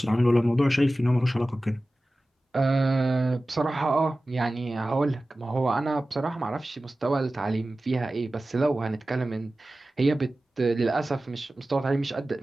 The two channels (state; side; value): normal; both; correlation 0.96